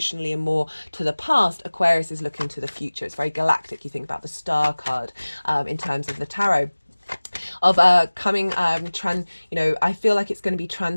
and more to the past, Aquarius is looking to the future. It's very galactic. You think about the star card in terms of the tarot. Of coming I feel like it's going to be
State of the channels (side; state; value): both; inverted; correlation -1.00